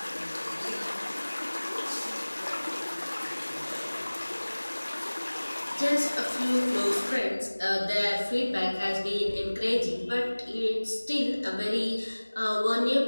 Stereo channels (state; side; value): inverted; both; correlation -1.00